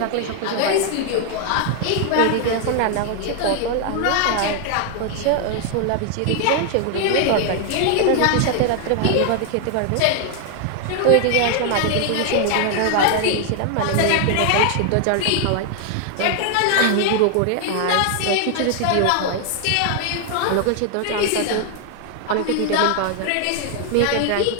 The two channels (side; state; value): both; different; correlation 0.00